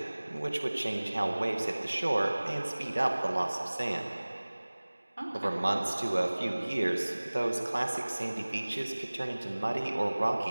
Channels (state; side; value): inverted; both; correlation -1.00